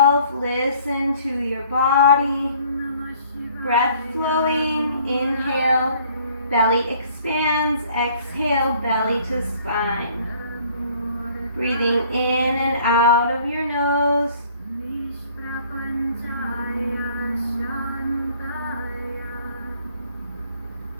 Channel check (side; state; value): both; inverted; correlation -0.57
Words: Listen to your body. Breath flowing. Inhale, belly expands. Exhale, belly to spine. Breathing in and out of your nose.